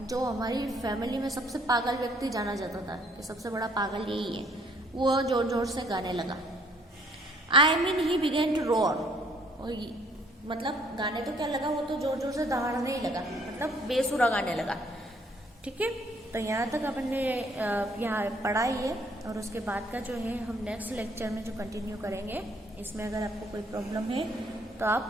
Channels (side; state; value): both; normal; correlation 0.63